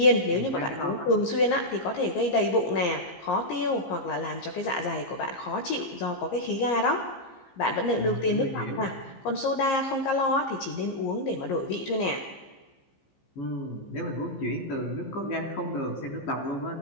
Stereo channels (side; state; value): right; late; 15 ms